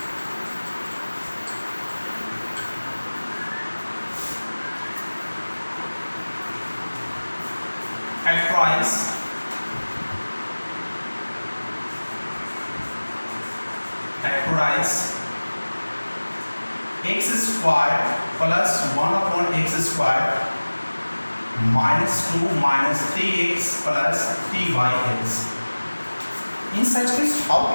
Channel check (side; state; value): both; inverted; correlation -1.00